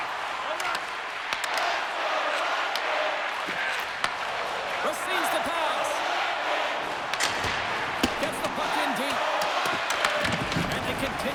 Receives the pass. Gets the puck in deep. And they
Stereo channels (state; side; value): identical; both; correlation 1.00